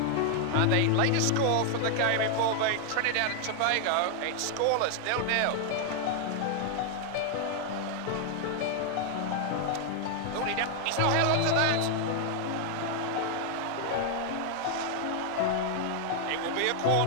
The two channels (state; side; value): different; both; correlation 0.00